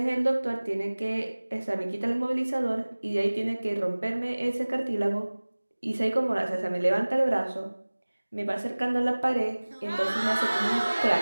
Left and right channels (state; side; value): inverted; both; correlation -1.00